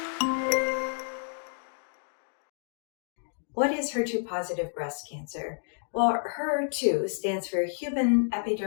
What is HER2 positive breast cancer? Well, HER2 stands for Human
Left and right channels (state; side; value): silent; right; digital silence